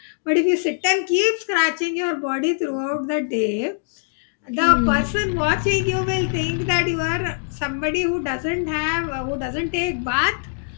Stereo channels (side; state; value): right; silent; digital silence